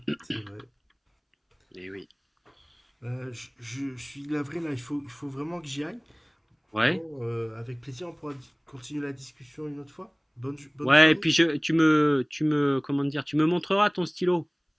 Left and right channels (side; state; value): both; identical; correlation 1.00